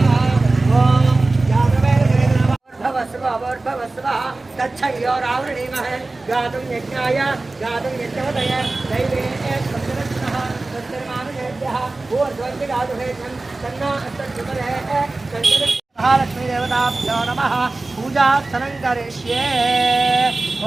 ओम जातवेदभवस्व तच्छयोरावृणीमः गातुं यज्ञाय गातुं यज्ञवतय दैवे सप्तदशनः तत्सर्वानुजेभ्यः ऊर्ध्वं गातुहे तन्ना अस्तुमरे संकट महालक्ष्मी देवताभ्यो नमः। पूजार्चनं करिष्ये।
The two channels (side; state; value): left; quieter; 3.2 dB